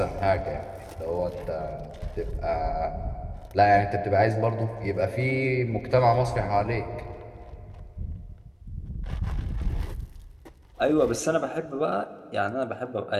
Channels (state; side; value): identical; both; correlation 1.00